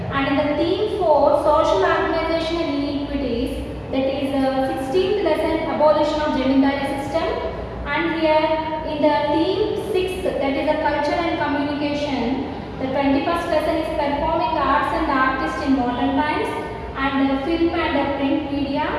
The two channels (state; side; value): identical; both; correlation 1.00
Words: And in the theme 4, social organization and inequities. That is 16th lesson, abolition of Jamindari system. And here in the theme 6, that is the culture and communication. The 21st lesson is performing arts and artists in modern times. And film and print media,